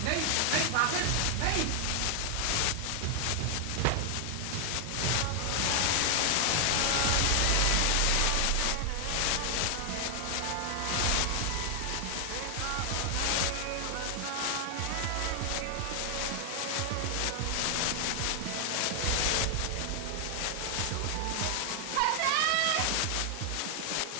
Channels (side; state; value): both; different; correlation 0.00